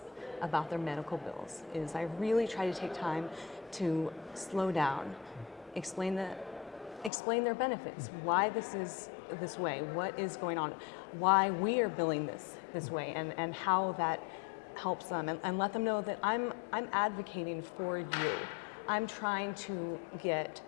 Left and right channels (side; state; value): right; drops out; at 7.1 s